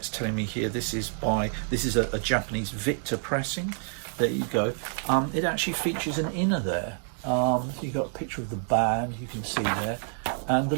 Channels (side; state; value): left; silent; 59 dB below the other